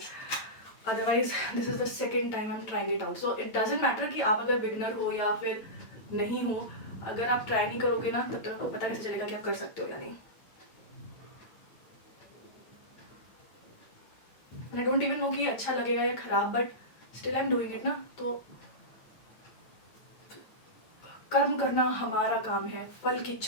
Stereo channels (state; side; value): late; right; 9.0 ms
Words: Otherwise this is the second time I am trying it out. So it doesn't matter कि आप अगर बिगनर हो या फिर नहीं हो, अगर आप ट्राई नहीं करोगे ना तब तक आपको पता कैसे चलेगा कि आप कर सकते हो या नहीं. आई डोंट इवन नो कि अच्छा लगेगा या खराब, but still I am doing it ना. तो कर्म करना हमारा काम है, फल की